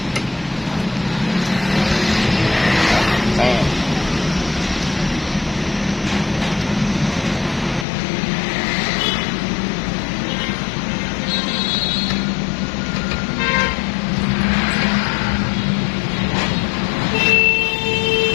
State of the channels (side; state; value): right; drops out; at 7.9 s